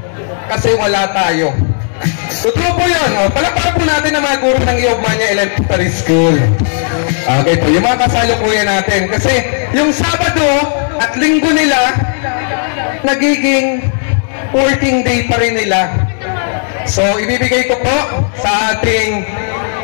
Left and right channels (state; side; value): silent; right; 64 dB below the other